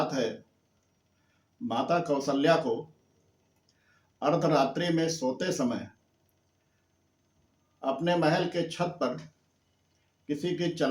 है। माता कौशल्या को अर्धरात्रि में सोते समय अपने महल के छत पर किसी के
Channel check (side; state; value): both; identical; correlation 1.00